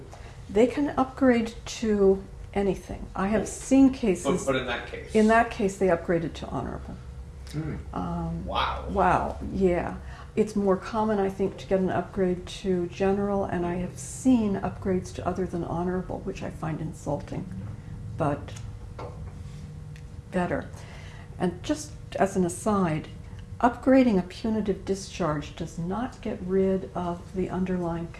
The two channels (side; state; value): both; identical; correlation 1.00